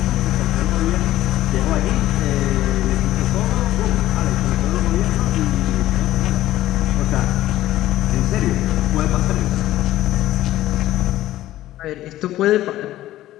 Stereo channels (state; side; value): quieter; right; 14.6 dB